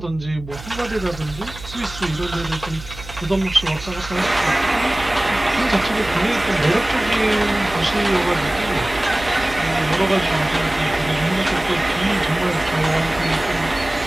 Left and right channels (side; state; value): right; noise; hum, 15 dB below the sound